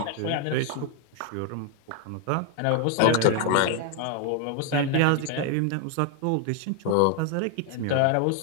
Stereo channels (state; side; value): different; both; correlation 0.01